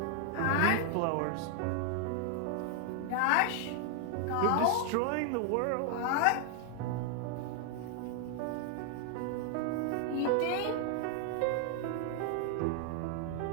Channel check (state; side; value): different; both; correlation 0.00